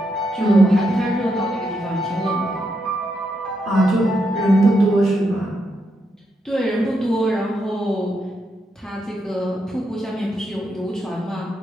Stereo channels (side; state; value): both; normal; correlation 0.81